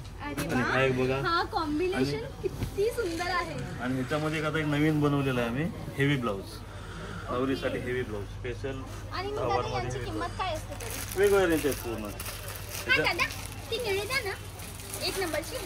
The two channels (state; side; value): identical; both; correlation 1.00